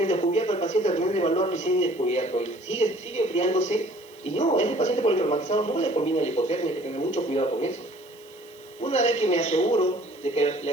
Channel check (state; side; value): noise; right; hiss, 27 dB below the sound